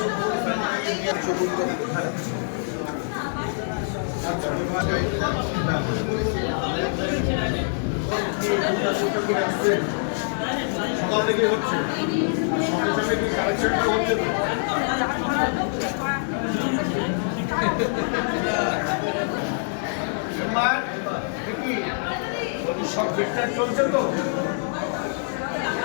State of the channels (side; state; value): right; silent; digital silence